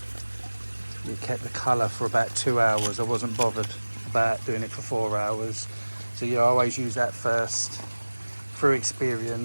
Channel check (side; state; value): both; inverted; correlation -1.00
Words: it kept the colour for about 2 hours. I wasn't bothered about doing it for 4 hours. So yeah, I always use that first. Through